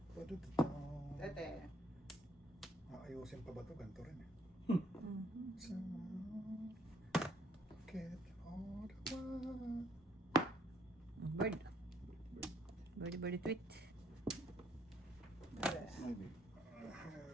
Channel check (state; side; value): normal; both; correlation 0.66